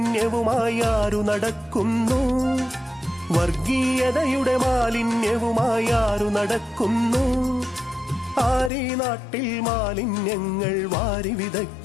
ആരു നടക്കുന്നു? വർഗീയതയുടെ മാലിന്യവുമായി ആരു നടക്കുന്നു? ആരീ നാട്ടിൽ മാലിന്യങ്ങൾ വാരി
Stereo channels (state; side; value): drops out; right; at 8.7 s